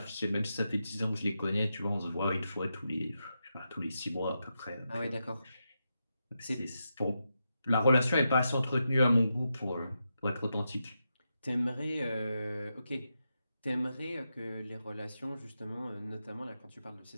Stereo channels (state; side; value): inverted; both; correlation -0.87